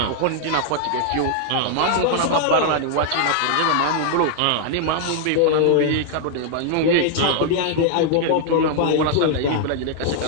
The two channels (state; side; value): different; both; correlation 0.00